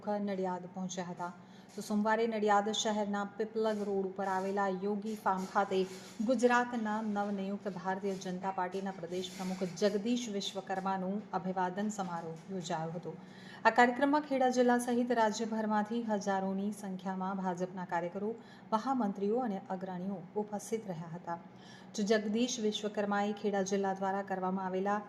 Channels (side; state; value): both; identical; correlation 1.00